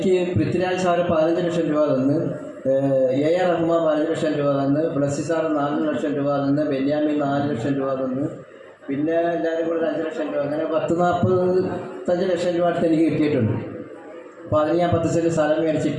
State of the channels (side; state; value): both; identical; correlation 1.00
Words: പൃഥ്വിരാജ് സാറ് 15 ലക്ഷം രൂപ തന്ന്, AR റഹ്മാൻ 15 ലക്ഷം രൂപ തന്ന്, ബ്ലസ്സി സാറ് 4 ലക്ഷം രൂപ തന്ന്, ബെന്യാമിൻ 4 ലക്ഷം രൂപ തന്ന്, പിന്നെ എല്ലാവരും കൂടെ 5 ലക്ഷം രൂപ, അങ്ങനെ 45 ലക്ഷം രൂപ അടുത്ത് എനിക്ക് കിട്ടിയിട്ടുണ്ട്. അപ്പോൾ അതിന് ഞാൻ 10 സെൻറ്റ് സ്ഥലം